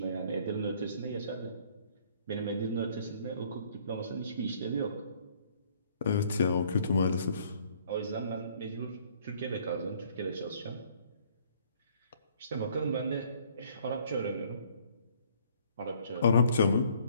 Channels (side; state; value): both; inverted; correlation -0.60